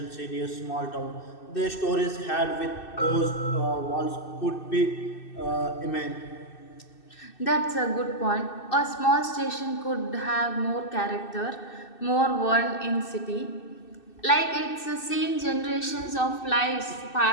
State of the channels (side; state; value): right; late; 2.6 ms